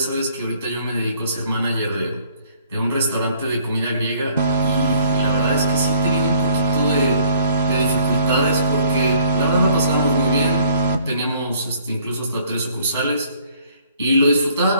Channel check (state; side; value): inverted; both; correlation -0.60